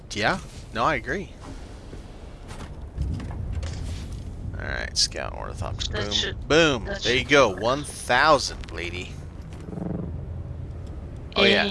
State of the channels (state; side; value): identical; both; correlation 1.00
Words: yeah. No, I agree. All right, scout ornithopter. That Boom, should- boom. that There you should go. work. 1,000, lady. Oh yeah.